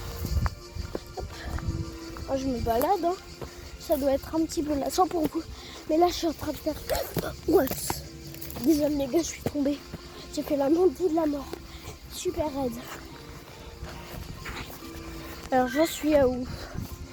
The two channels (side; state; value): both; identical; correlation 1.00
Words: Oh, je me balade, hein. Ça doit être un petit peu lassant pour vous. Mais là je suis en train de faire... Ouais. Désolé les gars, je suis tombée. J'ai fait la montée de la mort. Super raide. Alors j'en suis à où?